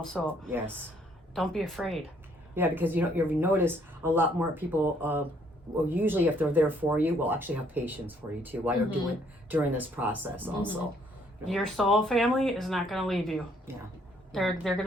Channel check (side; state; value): both; normal; correlation 0.66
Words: So Yes. don't be afraid. Yeah, because you notice a lot more people. Well, usually if they're there for you, will actually have patience for you too while you're doing during this process. Also, Your soul family is not going to leave you. yeah, They're going